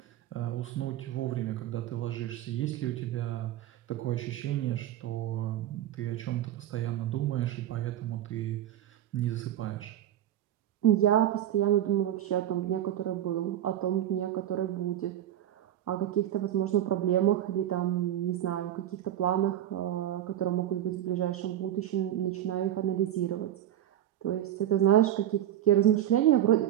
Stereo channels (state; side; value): quieter; left; 11.8 dB